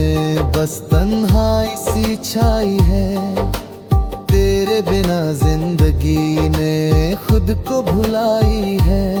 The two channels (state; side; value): identical; both; correlation 1.00